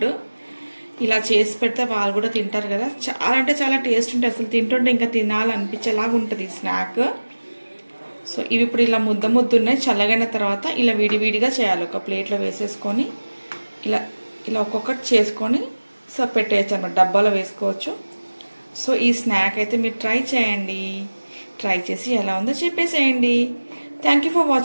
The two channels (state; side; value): inverted; both; correlation -1.00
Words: ఇలా చేసి పెడితే వాళ్ళు కూడా తింటారు కదా. చాలా అంటే చాలా టేస్ట్ ఉంటుంది, అసలు తింటుంటే ఇంకా తినాలనిపించేలాగా ఉంటుంది ఈ స్నాక్. సో ఇవి ఇప్పుడు ఇలా ముద్ద ఉన్నాయి. చల్లగైన తర్వాత ఇలా విడివిడిగా చేయాలి. ఒక ప్లేట్లో వేసేసుకొని ఇలా ఇలా ఒక్కొక్కటి చేసుకొని సో పెట్టేయచ్చు అన్నమాట, డబ్బాలో వేసుకోవచ్చు. సో ఈ స్నాక్ అయితే మీరు ట్రై చేయండి. ట్రై చేసి ఎలా ఉందో చెప్పేసేయండి. Thank you for